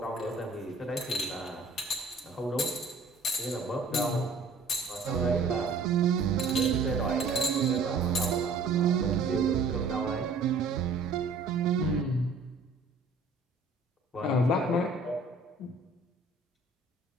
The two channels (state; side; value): quieter; left; 3.6 dB